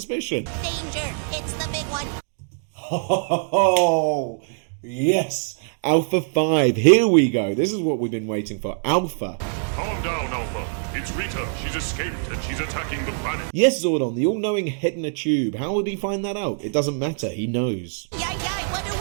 Danger, it's the big one. Oh, yes. Alpha 5. Here we go. This is what we've been waiting for. Alpha. Calm down, Alpha. It's Rita. She's escaped and she's attacking the planet. Yes, Zordon, the all-knowing head in a tube. How would he find that out? It doesn't matter. He knows. Yay, what do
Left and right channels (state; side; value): silent; left; digital silence